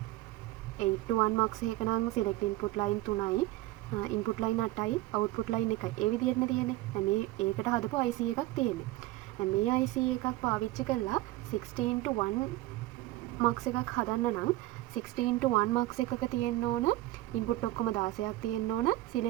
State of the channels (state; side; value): quieter; left; 17.3 dB